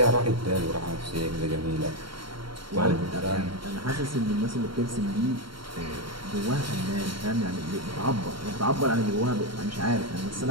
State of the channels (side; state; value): left; late; 0.73 ms